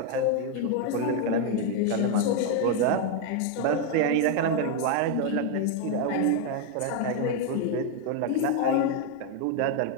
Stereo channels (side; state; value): both; different; correlation 0.01